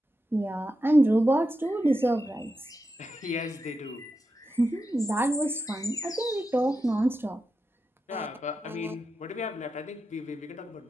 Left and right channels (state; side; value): normal; both; correlation 0.89